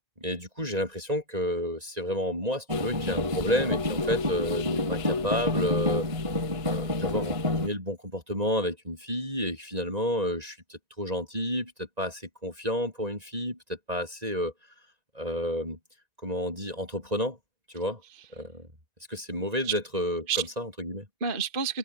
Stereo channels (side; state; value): left; late; 1.9 ms